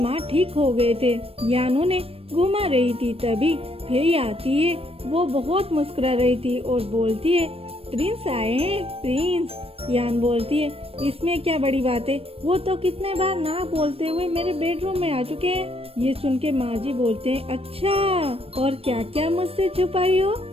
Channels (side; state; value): left; late; 0.28 ms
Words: ठीक हो गए थे। यान उन्हें घुमा रही थी तभी फेई आती है। वो बहुत मुस्कुरा रही थी और बोलती है, प्रिंस आए हैं प्रिंस। यान बोलती है, इसमें क्या बड़ी बात है, वो तो कितने बार ना बोलते हुए मेरे बेडरूम में आ चुके हैं। ये सुन के माँ जी बोलते हैं, अच्छा और क्या क्या मुझसे छुपाई हो?